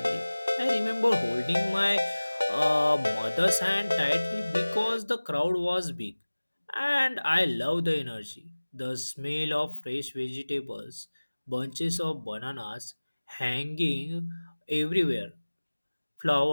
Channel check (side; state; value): both; inverted; correlation -1.00